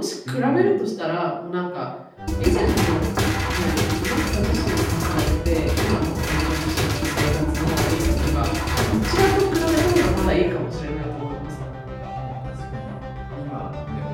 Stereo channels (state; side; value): identical; both; correlation 1.00